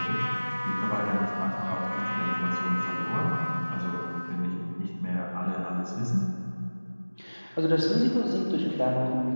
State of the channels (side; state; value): both; inverted; correlation -1.00